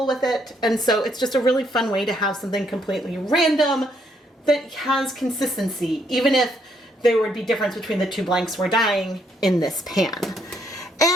with it. And so it's just a really fun way to have something completely random that has consistency, even if there would be difference between the 2 blanks we're dyeing in this pan.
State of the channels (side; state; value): both; normal; correlation 0.72